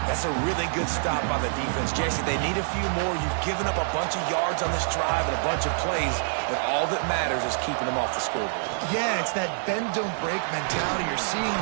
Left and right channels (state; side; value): silent; left; digital silence